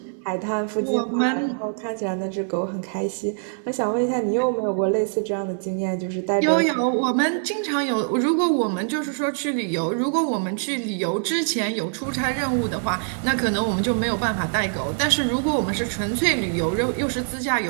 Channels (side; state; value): left; silent; digital silence